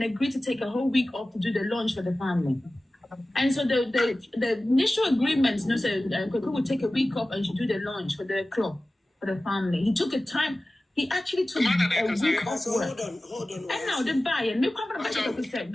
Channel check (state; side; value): normal; both; correlation 0.96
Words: agreed to take a whole week off to do the launch for the family. And so the initial agreement, you know, so Kweku would take a week off and should do the launch for the club, for the family. He took a time. He actually took a week off work. Hold on. And now the buyer, hold